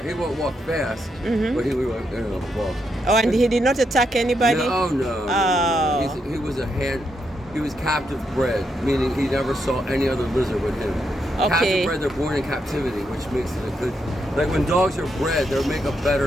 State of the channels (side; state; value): both; normal; correlation 0.81